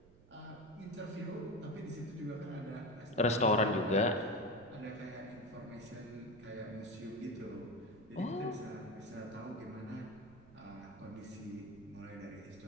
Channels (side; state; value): right; noise; rumble, 22 dB below the sound